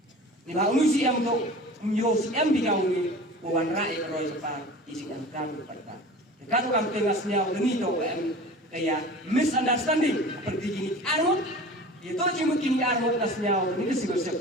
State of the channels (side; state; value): both; normal; correlation 0.39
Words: ni ba usi em to myo si em bigau ni wan rai roi pa isi em kan pa kan kam tengasnya ngini to em kaya misunderstanding seperti gini arut itu jimot kini arut nasnya ni civil